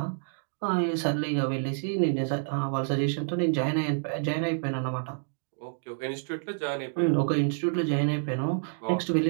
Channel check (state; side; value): silent; left; digital silence